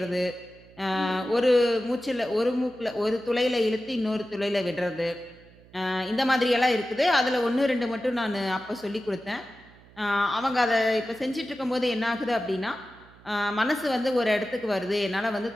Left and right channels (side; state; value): right; noise; hum, 25 dB below the sound